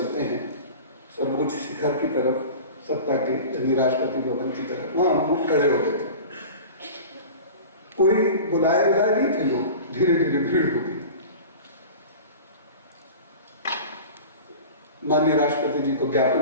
हैं, सर्वोच्च शिखर की तरफ, सत्ता के यानी राष्ट्रपति भवन की तरफ, वहां हम लोग खड़े हो गए थे। कोई बुलाए नहीं थे लोग, धीरे धीरे भीड़ हो गई। माननीय राष्ट्रपति जी को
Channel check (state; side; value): inverted; both; correlation -0.36